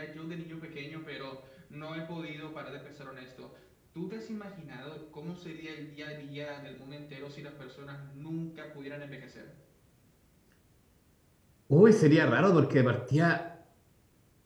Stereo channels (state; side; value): identical; both; correlation 1.00